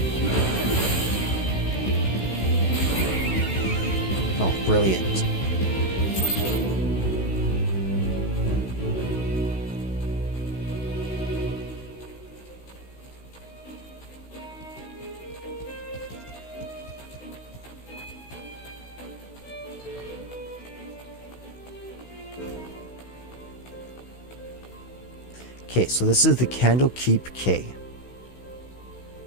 Oh, brilliant. Okay, so this is the Candlekeep K.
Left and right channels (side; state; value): right; late; 16 ms